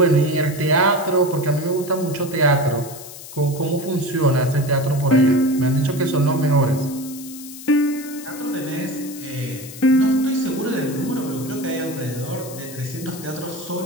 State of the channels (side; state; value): left; noise; hiss, 14 dB below the sound